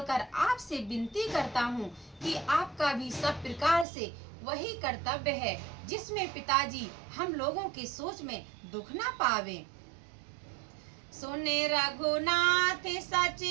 आपसे विनती करता हूँ कि आपका भी सब प्रकार से वही कर्तव्य है जिसमें पिताजी हम लोगों की सोच में दुख न पावे। सुने रघुनाथ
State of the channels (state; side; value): drops out; left; at 3.9 s